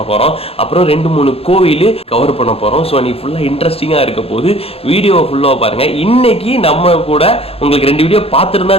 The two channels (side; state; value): right; late; 0.28 ms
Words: போகிறோம். அப்புறம் 2-3 கோவில் கவர் பண்ண போகிறோம். ஸோ இன்னைக்கு ஃபுல்லாக இன்ட்ரெஸ்டிங்காக இருக்க போது வீடியோ ஃபுல்லாக பாருங்கள். இன்னைக்கு நம்ம கூட உங்களுக்கு 2 வீடியோ பார்த்துருந்தா